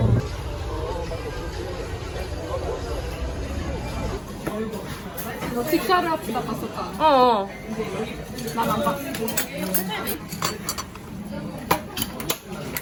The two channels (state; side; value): identical; both; correlation 1.00